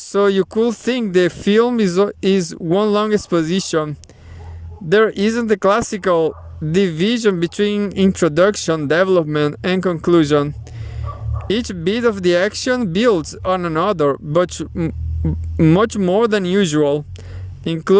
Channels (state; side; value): identical; both; correlation 1.00